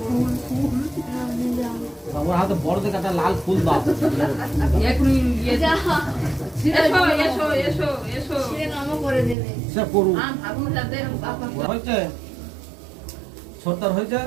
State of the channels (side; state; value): left; drops out; at 9.3 s